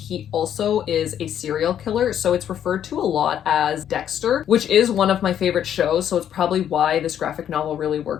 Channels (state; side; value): quieter; right; 9.8 dB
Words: also is a serial killer, so it's referred to a lot as Dexter, which is one of my favorite shows, so it's probably why this graphic novel really